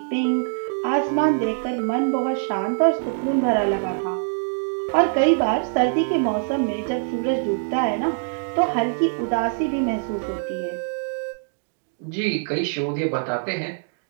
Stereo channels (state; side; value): silent; left; digital silence